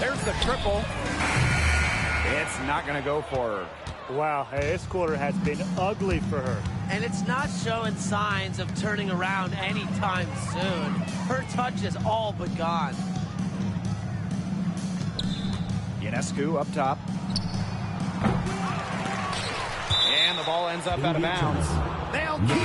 the triple. It's not going to go for her. Wow, hey, this quarter has been ugly for her. And it's not showing signs of turning around anytime soon. Her touch is all but gone. Ionescu up top. And the ball ends up out of bounds. They'll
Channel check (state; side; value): identical; both; correlation 1.00